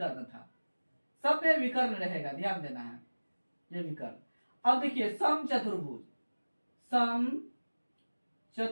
था, सब में विकर्ण रहेगा, ध्यान देना है। ये विकर्ण। अब देखिए समचतुर्भुज,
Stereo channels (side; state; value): both; inverted; correlation -1.00